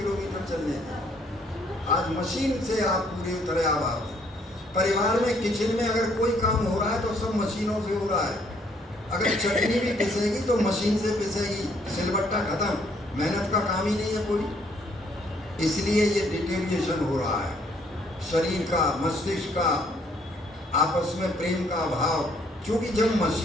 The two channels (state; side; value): normal; both; correlation 0.66